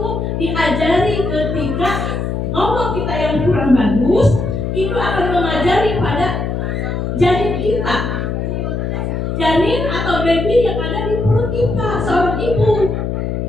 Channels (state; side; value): noise; left; hum, 2 dB below the sound